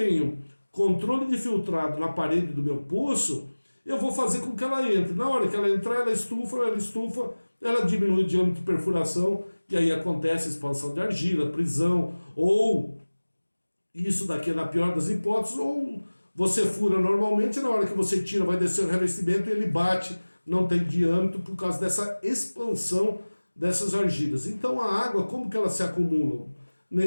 controle de filtrado na parede do meu poço, eu vou fazer com que ela entre. Na hora que ela entrar, ela estufa, ela diminui o diâmetro de perfuração, e aí acontece a expansão de argila, prisão, ou isso daqui é na pior das hipóteses, ou você fura normalmente, na hora que você tira, vai descer o revestimento e ele bate, não tem diâmetro por causa dessa expansão dessas argilas. Então a água, como que ela se acumula?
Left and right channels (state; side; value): inverted; both; correlation -1.00